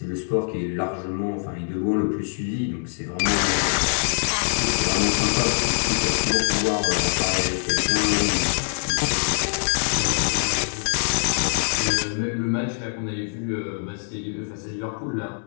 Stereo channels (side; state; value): right; silent; 63 dB below the other